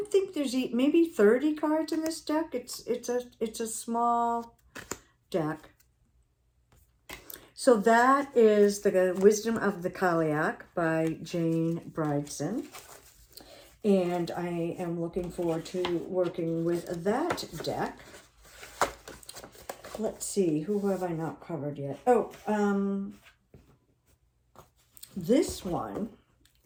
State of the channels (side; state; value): both; identical; correlation 1.00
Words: think there's maybe 30 cards in this deck. It's a small deck. So that is the Wisdom of the Kaliak by Jane Bridson. And I am looking forward to working with that deck. Let's see, who have I not covered yet? Oh, this one